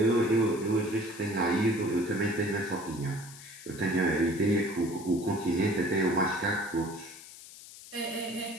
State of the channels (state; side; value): noise; left; hiss, 17 dB below the sound